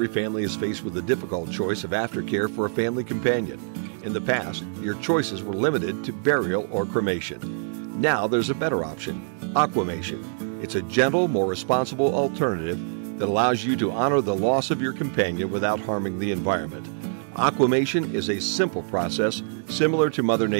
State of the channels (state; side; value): silent; left; 62 dB below the other